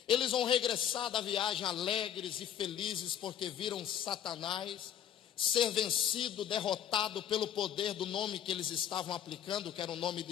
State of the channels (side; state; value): right; quieter; 10.1 dB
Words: Eles vão regressar da viagem alegres e felizes, porque viram Satanás ser vencido, derrotado pelo poder do nome que eles estavam aplicando, que era o nome